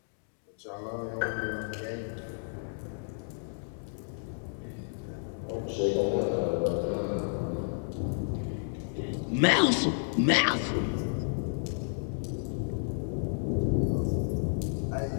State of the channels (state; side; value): silent; right; digital silence